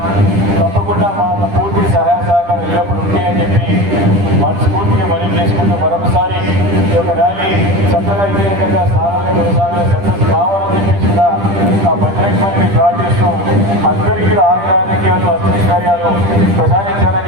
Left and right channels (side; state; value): left; late; 10 ms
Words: తప్పకుండా మా పూర్తి సహాయ సహకారం ఎల్లప్పుడు ఉంటాయని చెప్పి మనస్ఫూర్తిగా మనం చేసుకుంటూ మరొకసారి ఈ యొక్క ర్యాలీ చక్కగా ఇదే రకంగా సాధారణ కొనసాగా సక్సెస్ కావాలని చెప్పేసి కూడా ఆ బజరంగబలిని ప్రార్థిస్తూ అందరికీ ఆరోగ్యాలు అష్టైశ్వర్యాలు ప్రసాదించాలని